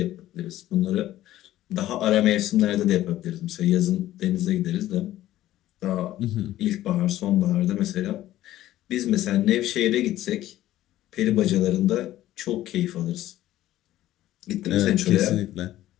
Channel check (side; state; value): right; quieter; 14.2 dB